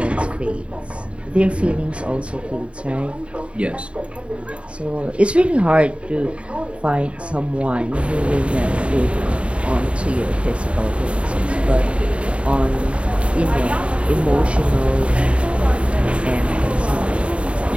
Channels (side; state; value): left; late; 0.060 ms